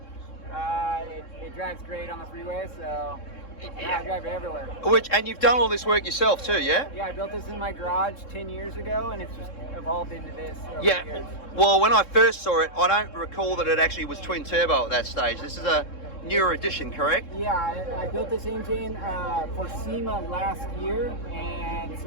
It drives great on the freeway, so I drive it everywhere. And you've done all this work yourself too, yeah? Yeah, I built this in my garage 10 years ago, and it's just evolved into this over the Yeah. years. Well, when I first saw it, I don't recall that it actually was twin turbo at that stage. This is a newer edition, correct? Yeah, I built this engine for SEMA last year, and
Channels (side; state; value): right; late; 3.7 ms